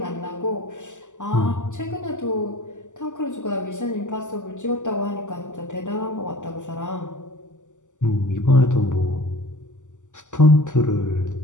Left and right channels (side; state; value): right; late; 0.86 ms